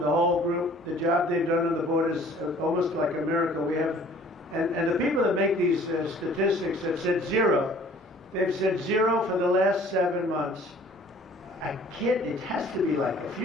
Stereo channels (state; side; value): normal; both; correlation 0.52